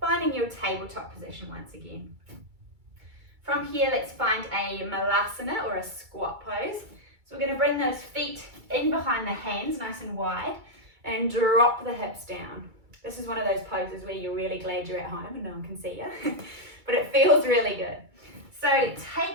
your tabletop position once again. From here, let's find a Malasana or a squat pose. So we're going to bring those feet in behind the hands, nice and wide, and drop the hips down. This is one of those poses where you're really glad you're at home and no one can see you, but it feels really good. So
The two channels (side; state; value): left; late; 2.3 ms